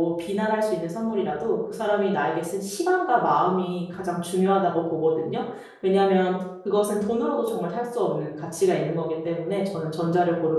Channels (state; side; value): identical; both; correlation 1.00